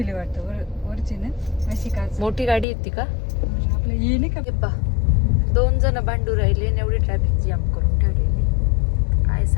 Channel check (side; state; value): right; drops out; at 2.7 s